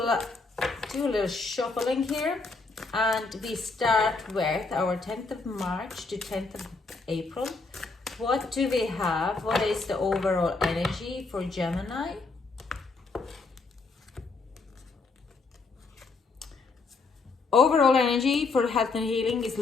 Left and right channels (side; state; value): right; quieter; 3.9 dB